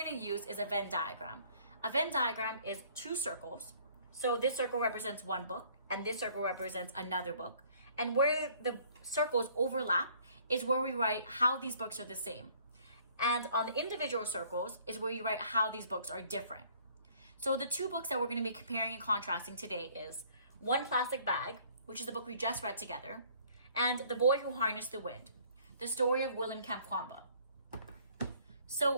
to use is a Venn diagram. A Venn diagram is 2 circles. So this circle represents one book and this circle represents another book. And where the circles overlap is where we write how these books are the same. And on the individual circles is where you write how these books are different. So the 2 books that we're going to be comparing and contrasting today is One Plastic Bag, which is the book we just read together, and The Boy Who Harnessed the Wind, the story of William Kamkwamba.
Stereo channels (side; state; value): both; inverted; correlation -0.58